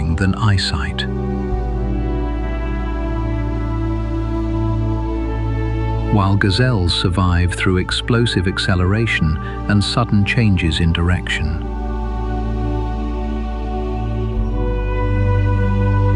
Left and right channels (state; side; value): identical; both; correlation 1.00